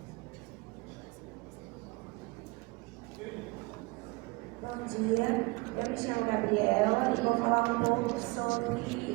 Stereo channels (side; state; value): left; quieter; 25.3 dB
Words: Bom dia, eu me chamo Gabriela e vou falar um pouco